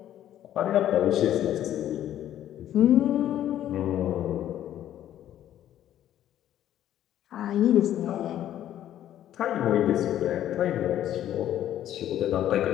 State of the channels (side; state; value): right; quieter; 11.7 dB